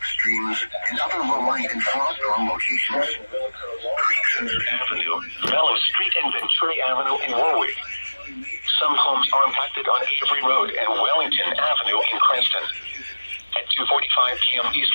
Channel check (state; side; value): inverted; both; correlation -1.00